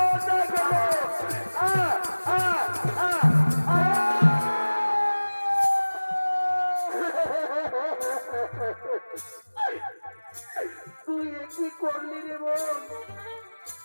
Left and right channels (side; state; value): both; inverted; correlation -1.00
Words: করবো। তুই কি করলি রে বোন,